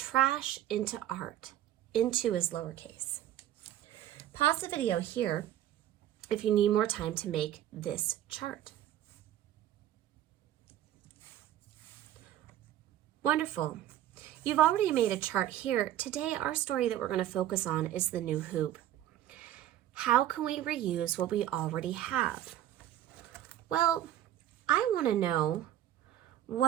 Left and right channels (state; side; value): quieter; left; 12.4 dB